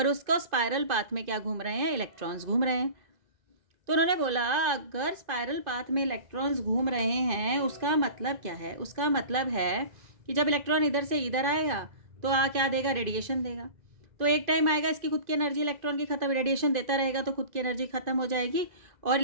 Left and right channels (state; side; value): late; left; 2.5 ms